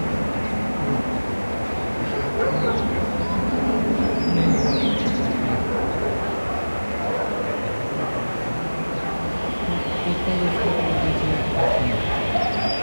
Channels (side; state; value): both; inverted; correlation -1.00